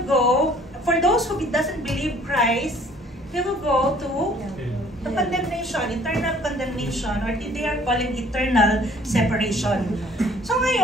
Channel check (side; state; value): both; normal; correlation 0.56